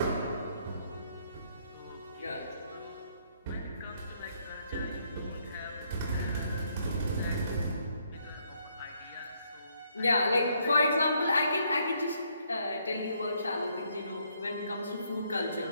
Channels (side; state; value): both; inverted; correlation -0.71